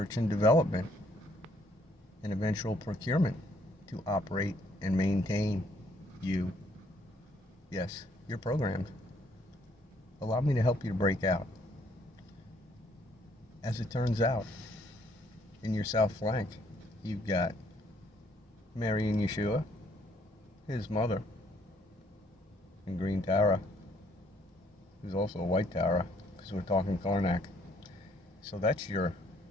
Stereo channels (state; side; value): normal; both; correlation 0.67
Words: and development and eventual procurement to operate and maintain you. Yes, you're programmed. Allow me to help you to break out. As it turns out, in your south flank, you've got Mary and Yeshua, his mother, and Green Tara, who's also a white Tara. Because we're talking Karnak. So that's your